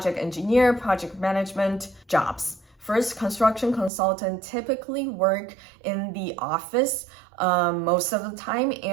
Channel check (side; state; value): left; drops out; at 3.9 s